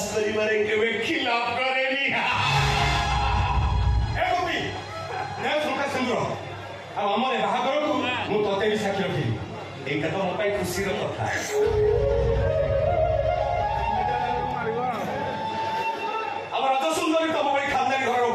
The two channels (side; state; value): both; identical; correlation 1.00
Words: କରିବାରେ କେବେ ଖିଲାପ କରେନି ଏ ଗୋପୀ ନେ ଶଙ୍ଖା ସିନ୍ଦୁର ଆଉ ଆମର ବାହାଘରକୁ ମୁଁ ତତେ ବି ସାକ୍ଷୀ ରଖିବି ଏଇଟା ତ ମୋ ପାଇଁ ଖୁସିର କଥା ଆମ ରଜ ସୁନ୍ଦରୀ ତମ ଭଳି ଖାନଦାନୀ ଘରର